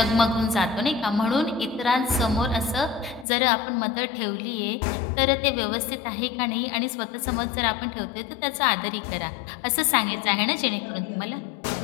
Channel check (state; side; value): drops out; right; at 3.2 s